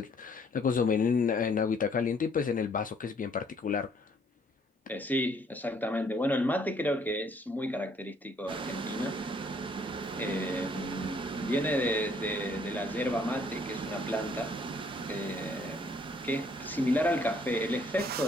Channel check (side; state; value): both; normal; correlation 0.64